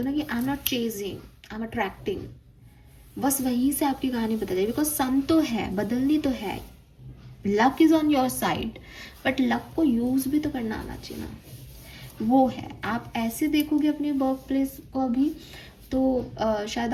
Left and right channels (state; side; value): identical; both; correlation 1.00